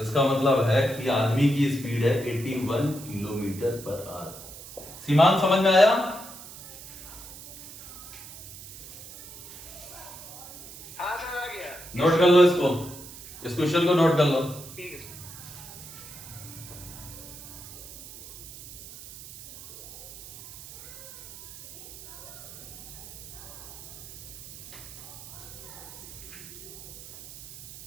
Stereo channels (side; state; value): right; noise; hiss, 15 dB below the sound